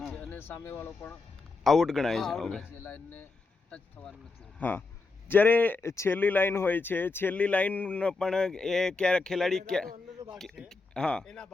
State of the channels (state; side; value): quieter; right; 3.9 dB